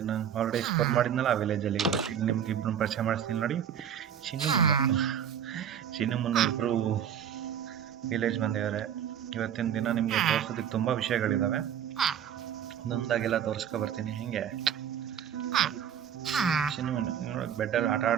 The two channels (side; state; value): left; quieter; 9.0 dB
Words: ನಾನು ಆಲ್ರೆಡಿ ಎಕ್ಸ್ಪ್ಲೋರ್ ಮಾಡಿದ್ನಲ್ಲ ಆ ವಿಲೇಜಲ್ಲಿ. ಈಗ ನಿಮ್ಗೆ ಇಬ್ಬರು ಪರಿಚಯ ಮಾಡಿಸ್ತೀನಿ ನೋಡಿ. ಚಿನ್ನು ಮುನ್ನ ಚಿನ್ನು ಮುನ್ನ ಇಬ್ಬರು ವಿಲೇಜ್ ಬಂದಿದ್ದಾರೆ. ಇವತ್ತಿನ ದಿನ ನಿಮಗೆ ತೋರಿಸೋದಕ್ಕೆ ತುಂಬ ವಿಷಯಗಳಿದ್ದಾವೆ. ಒಂದೊಂದಾಗೆಲ್ಲ ತೋರಿಸ್ಕೊ ಬರ್ತೀನಿ. ಹಿಂಗೆ ಚಿನ್ನು ನೋಡೋಕೆ ಬೆಡ್ಡಲ್ಲಿ ಆಟ